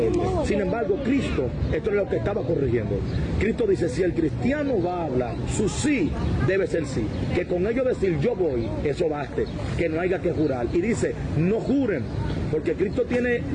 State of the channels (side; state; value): both; identical; correlation 1.00